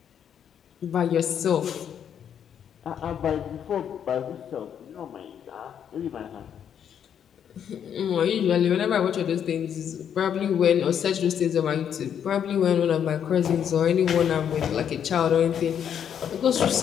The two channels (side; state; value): right; quieter; 8.7 dB